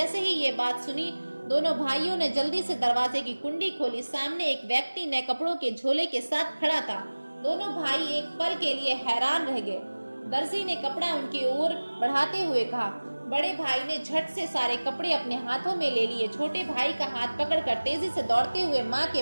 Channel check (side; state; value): both; inverted; correlation -1.00